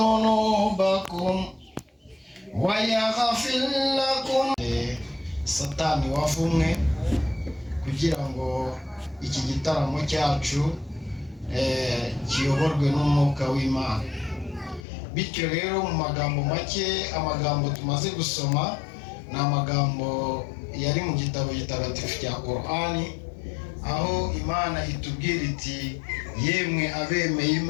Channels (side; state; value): right; drops out; at 14.9 s